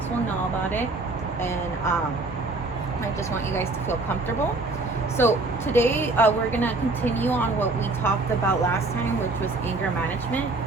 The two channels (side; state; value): left; quieter; 3.2 dB